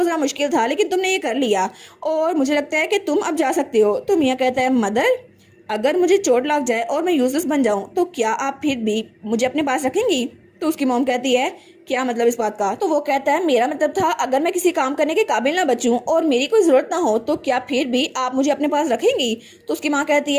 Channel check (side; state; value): both; identical; correlation 1.00